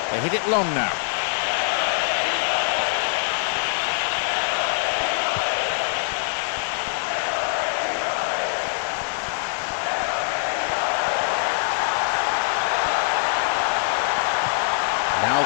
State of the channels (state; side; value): silent; right; digital silence